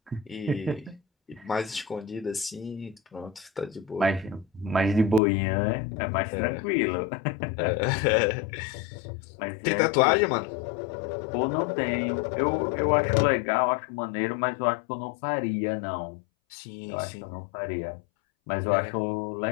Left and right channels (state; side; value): drops out; right; at 5.2 s